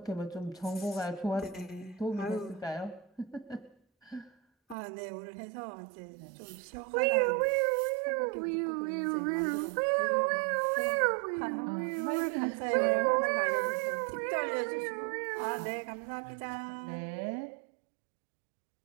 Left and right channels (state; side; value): drops out; left; at 4.8 s